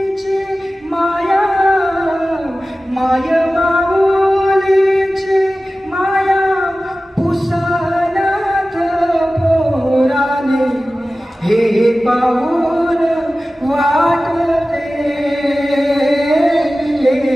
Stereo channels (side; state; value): both; normal; correlation 0.96